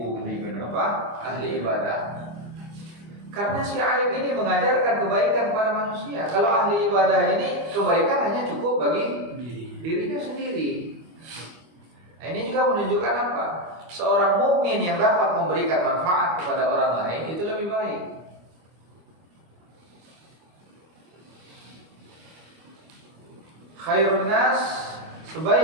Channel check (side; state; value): left; late; 25 ms